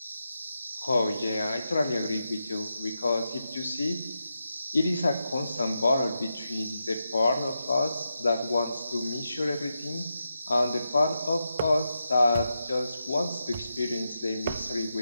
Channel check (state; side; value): inverted; both; correlation -0.87